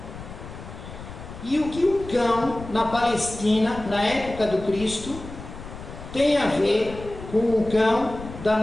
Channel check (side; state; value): left; noise; rumble, 13 dB below the sound